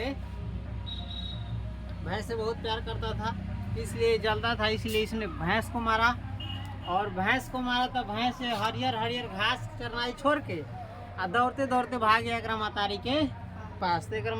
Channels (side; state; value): both; identical; correlation 1.00